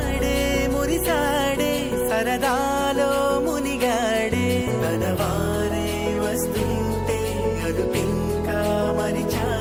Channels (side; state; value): both; identical; correlation 1.00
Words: మురి మనవారే వస్తుంటే అదుపింకా